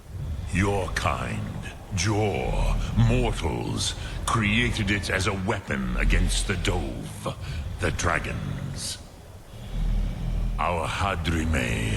Your kind, Jor, mortals, created it as a weapon against the Dove, the dragons. Our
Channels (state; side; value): identical; both; correlation 1.00